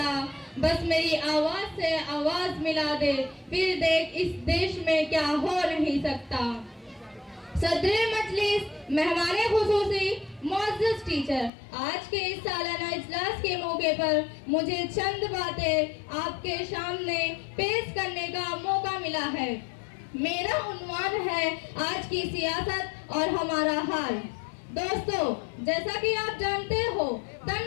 बस मेरी आवाज से आवाज मिला दे, फिर देख इस देश में क्या हो नहीं सकता। सदरे मजलिस, मेहमाने खुसूसी, मुअज़्ज़ज़ टीचर, आज के इस सालाना इजलास के मौके पर मुझे चंद बातें आपके सामने पेश करने का मौका मिला है। मेरा उन्वान है आज की सियासत और हमारा हाल। दोस्तों, जैसा कि आप जानते हो,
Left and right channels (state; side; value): drops out; right; at 11.5 s